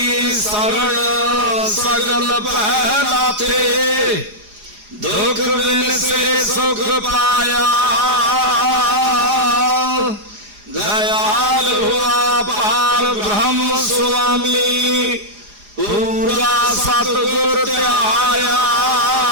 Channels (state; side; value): late; left; 4.9 ms